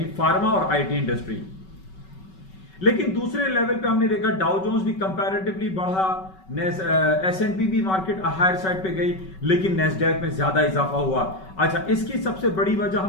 فارما اور آئی ٹی انڈسٹری. لیکن دوسرے لیول پہ ہم نے دیکھا ڈاؤ جونز بھی کمپیریٹیولی بڑھا, S&P بھی مارکیٹ ہائر سائڈ پہ گئی, لیکن نیسڈیک میں زیادہ اضافہ ہوا. اچھا, اس کی سب سے بڑی وجہ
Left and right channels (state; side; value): late; right; 5.3 ms